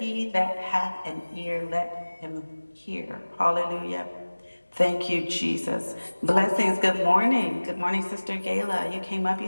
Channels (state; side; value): inverted; both; correlation -1.00